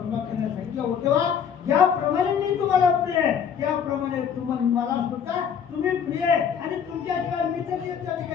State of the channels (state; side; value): quieter; right; 7.7 dB